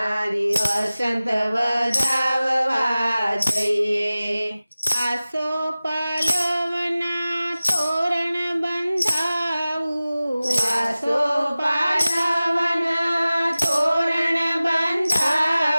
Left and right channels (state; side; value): inverted; both; correlation -0.97